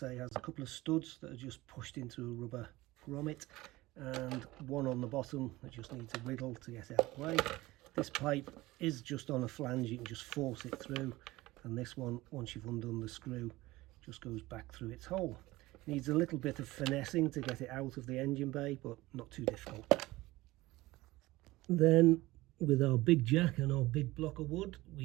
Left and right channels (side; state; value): left; quieter; 19.1 dB